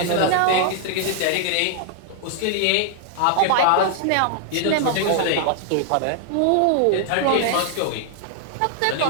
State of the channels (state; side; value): different; both; correlation -0.01